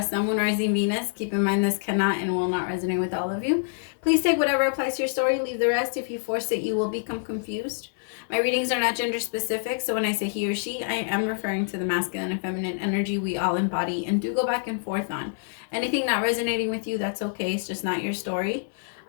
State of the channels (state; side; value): silent; right; 61 dB below the other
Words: Moon, Rising, Venus. Keep in mind this cannot and will not resonate with all of you. Please take whatever applies to your story, leave the rest. If you force it, you will become confused. My readings are not gender specific, so when I say he or she, I am referring to the masculine and feminine energy we all embody and do go back and forth on. Anything not resonating with you, that's okay. It's just not your story.